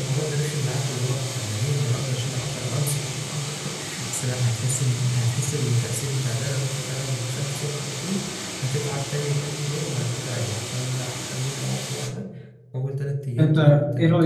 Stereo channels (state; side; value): identical; both; correlation 1.00